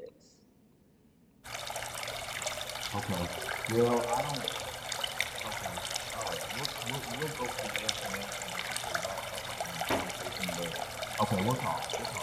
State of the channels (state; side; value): identical; both; correlation 1.00